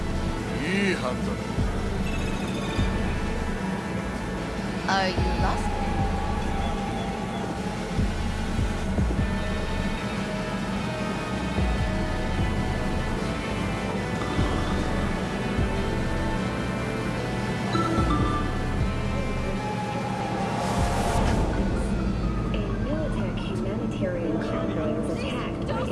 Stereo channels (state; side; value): identical; both; correlation 1.00